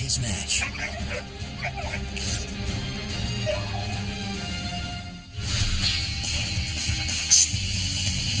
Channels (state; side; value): identical; both; correlation 1.00